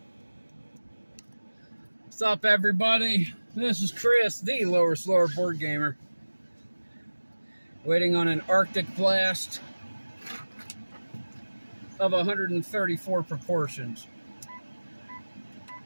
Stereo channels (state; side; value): inverted; both; correlation -1.00